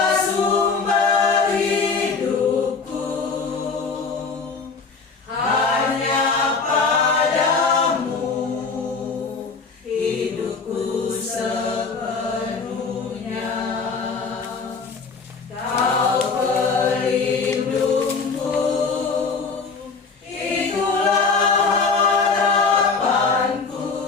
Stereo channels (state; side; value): quieter; right; 4.7 dB